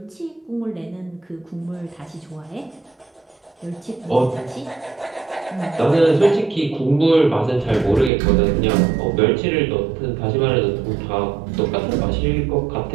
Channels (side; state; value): left; drops out; at 8.1 s